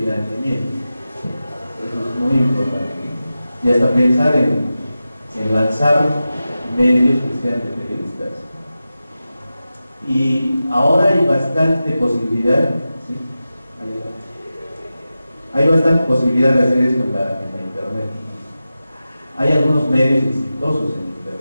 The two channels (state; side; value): inverted; both; correlation -0.93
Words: Eso es muy importante. Y hasta pensar en lanzar medios que sean de periodistas. Y ahora hay bastante posibilidad, ¿sí? Hay bastante posibilidad de hacer esto en la internet. Hay algunos medios exitosos en